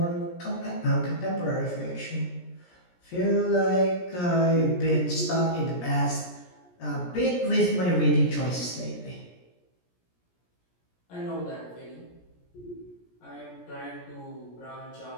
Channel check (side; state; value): right; late; 17 ms